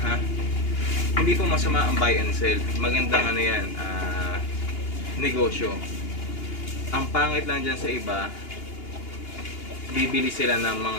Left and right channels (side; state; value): right; late; 2.8 ms